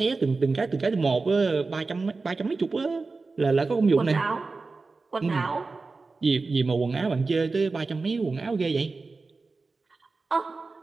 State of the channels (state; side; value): quieter; left; 3.9 dB